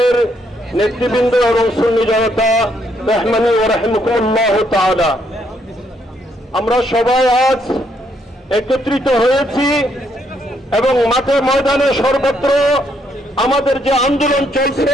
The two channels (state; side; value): normal; both; correlation 0.73